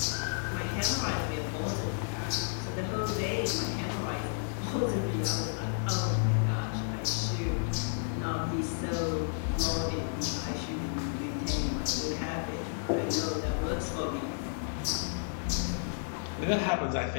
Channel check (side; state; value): right; silent; 56 dB below the other